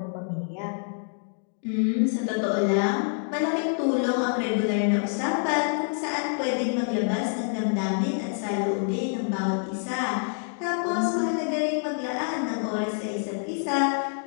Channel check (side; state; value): right; silent; 60 dB below the other